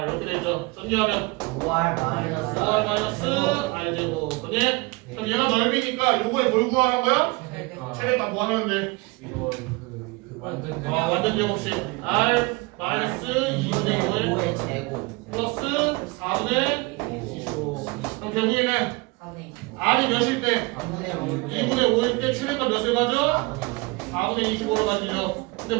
이렇게 되죠. 전개하면 5R 5R 마이너스 R 제곱. 그니? 그럼 얘가 넓이니까 요거에 뭘 구하는 거야? 최대값 뭐 하면 돼? 이거 그 완전 완전 제곱식 R 마이너스 2분의 5에 5의 제곱 플러스 4분의 25. 그럼 결국에는 4분의 25 R이 몇일 때? 3분의 5 2분의 5일 때 최대값 몇을 가져? 4분의 25로 가지죠.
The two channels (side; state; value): left; quieter; 26.0 dB